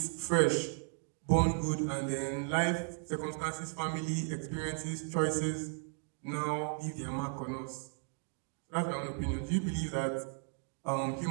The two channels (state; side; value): silent; left; 54 dB below the other